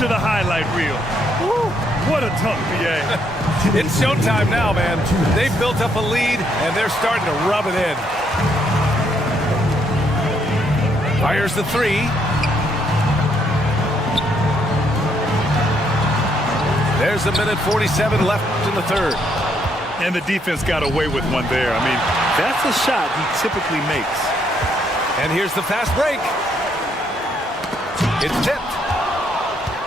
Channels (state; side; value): normal; both; correlation 0.72